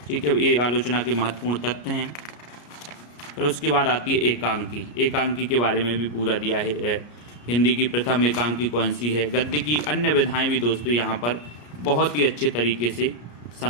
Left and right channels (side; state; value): right; late; 34 ms